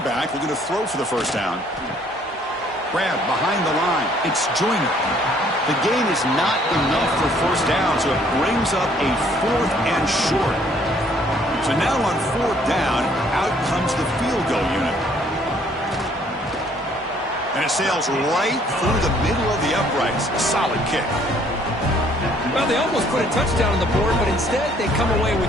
back, looking to throw for the first down. Grab behind the line. It's Joyner. The gain is not enough for first down, so it brings up a fourth and short. So now on fourth down, out comes the field goal unit. And it sails right through the middle of the uprights. A solid kick. Well, they almost put a touchdown on the board, but instead they come away with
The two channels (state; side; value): normal; both; correlation 0.62